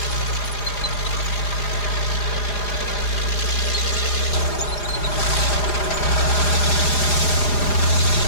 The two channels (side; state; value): right; late; 4.9 ms